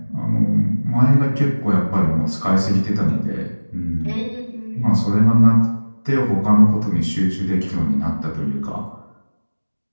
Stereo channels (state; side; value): inverted; both; correlation -1.00